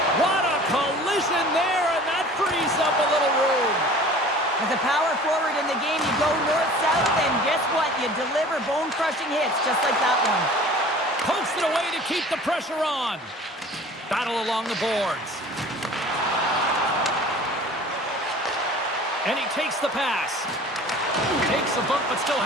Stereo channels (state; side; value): normal; both; correlation 0.44